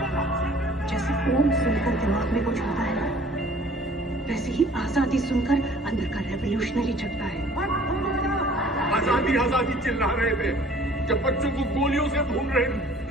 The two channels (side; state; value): both; normal; correlation 0.53